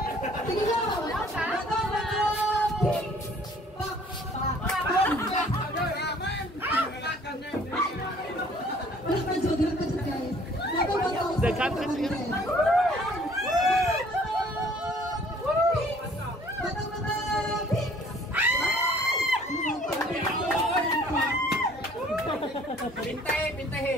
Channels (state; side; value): normal; both; correlation 0.56